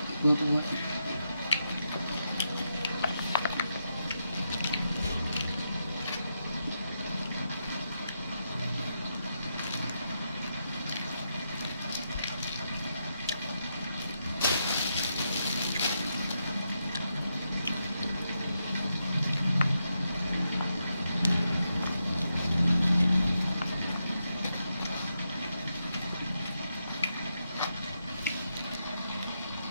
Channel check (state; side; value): inverted; both; correlation -0.84